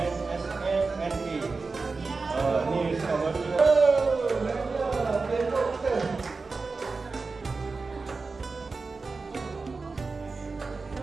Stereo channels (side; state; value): left; quieter; 4.1 dB